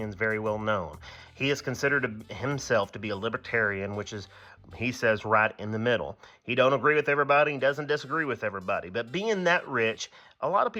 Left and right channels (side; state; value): both; identical; correlation 1.00